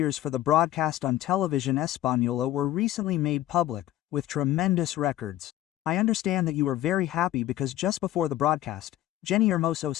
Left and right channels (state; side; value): quieter; right; 13.9 dB